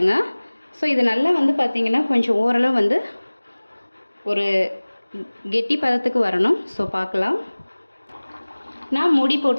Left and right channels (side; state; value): both; inverted; correlation -1.00